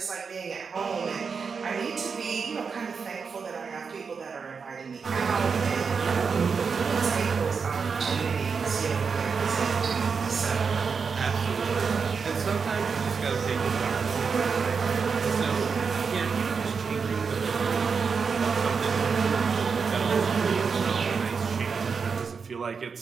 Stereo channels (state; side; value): quieter; left; 5.6 dB